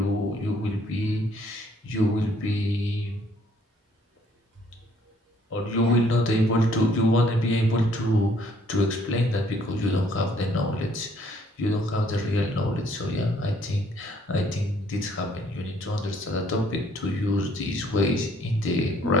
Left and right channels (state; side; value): normal; both; correlation 0.63